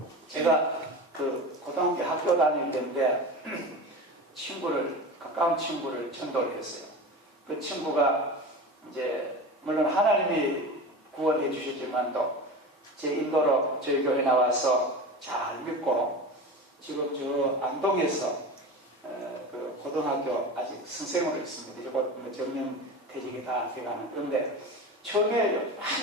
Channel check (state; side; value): normal; both; correlation 0.29